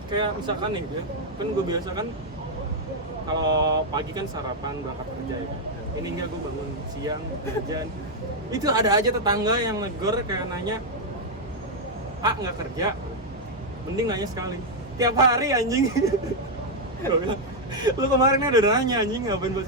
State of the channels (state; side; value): normal; both; correlation 0.00